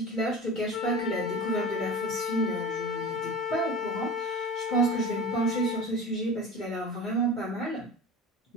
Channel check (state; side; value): normal; both; correlation 0.33